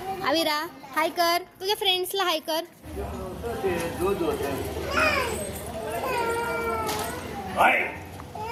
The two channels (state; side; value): identical; both; correlation 1.00